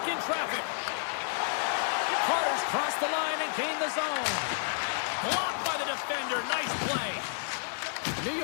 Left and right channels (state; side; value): silent; right; digital silence